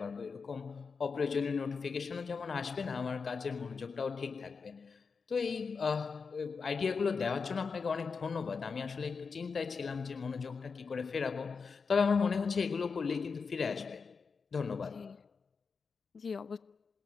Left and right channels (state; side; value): quieter; right; 5.2 dB